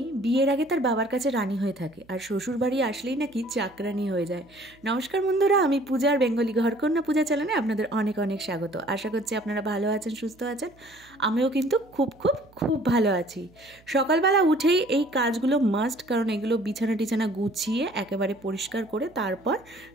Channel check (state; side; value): noise; right; hum, 28 dB below the sound